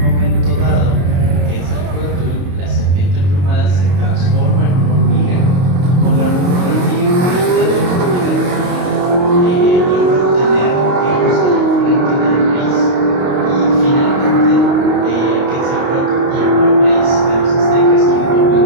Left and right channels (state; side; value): late; left; 22 ms